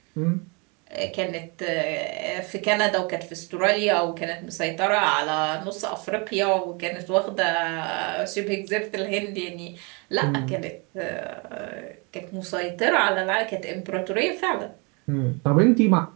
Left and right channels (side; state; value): left; quieter; 31.1 dB